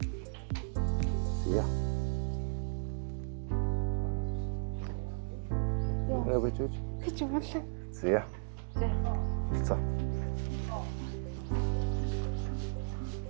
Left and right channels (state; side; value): silent; left; digital silence